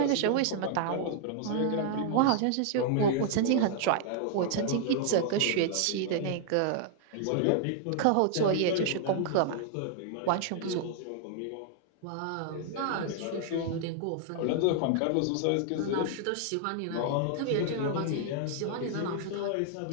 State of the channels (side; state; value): both; different; correlation -0.01